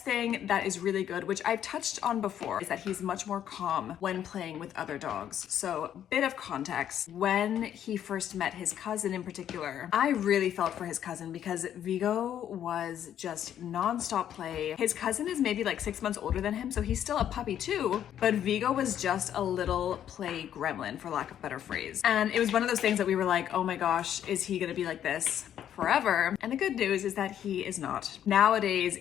thing that is really good, which I've touched on before, is that he's much more calm when playing with other dogs. So, bit of context. When he first met his cousin in particular, I really felt for his cousin because Vigo was just non-stop play. His cousin is maybe like 6 months older than him, so he's still a puppy too, but Vigo was just a little play gremlin, for lack of a better phrase. And it was one of those things that we were like, oh my gosh, is he gonna be like this forever? And the good news is that he is not. Nowadays,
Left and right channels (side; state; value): right; quieter; 10.2 dB